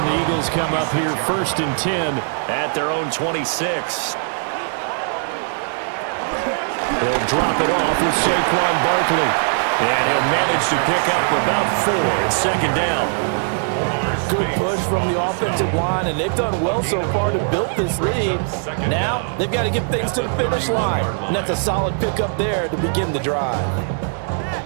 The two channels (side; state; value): left; silent; digital silence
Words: the Eagles come up here 1st and 10 at their own 26. They'll drop it off with Saquon Barkley. And he'll manage to pick up about 4 at 2nd down. Good push from the offensive line, and they've done well so far to build this lead. Now they've got to get things to the finish line, and that's a solid pickup there to begin the drive.